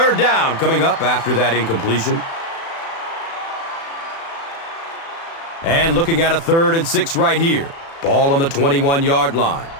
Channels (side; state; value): right; late; 36 ms